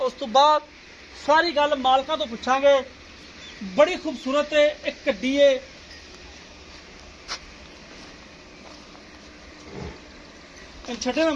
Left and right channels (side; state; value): both; identical; correlation 1.00